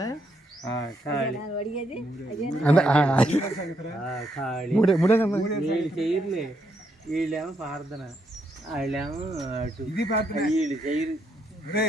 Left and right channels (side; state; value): both; normal; correlation 0.76